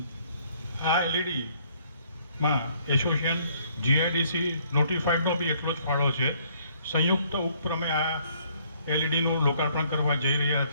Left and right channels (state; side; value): inverted; both; correlation -0.64